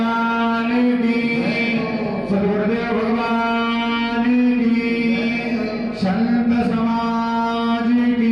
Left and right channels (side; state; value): both; identical; correlation 1.00